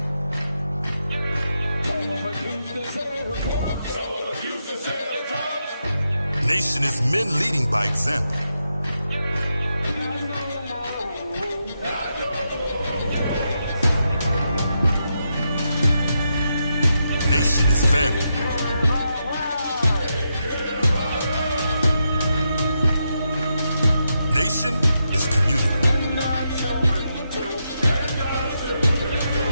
Nation is men leading by example. Nation is family. Nation is community.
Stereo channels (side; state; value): both; inverted; correlation -0.84